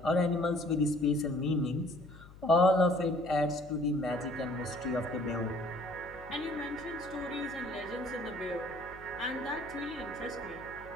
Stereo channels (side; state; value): left; noise; hum, 19 dB below the sound